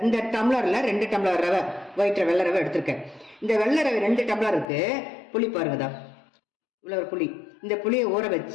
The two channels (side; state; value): right; drops out; at 4.7 s